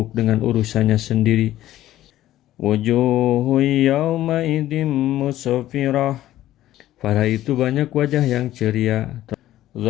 dengan urusannya sendiri. Wujuhu yawma idin musfirah. Pada itu banyak wajah yang ceria.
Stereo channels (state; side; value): quieter; right; 14.0 dB